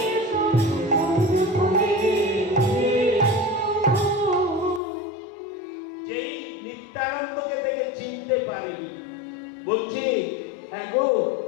যেই নিত্যানন্দকে দেখে চিনতে পারেনি, বলছি হ্যাঁ গো,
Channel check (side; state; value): right; drops out; at 4.8 s